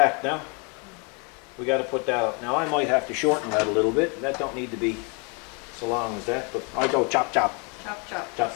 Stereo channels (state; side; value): quieter; right; 33.9 dB